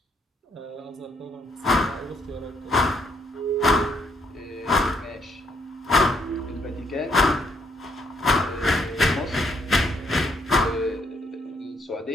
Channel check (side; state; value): both; normal; correlation 0.72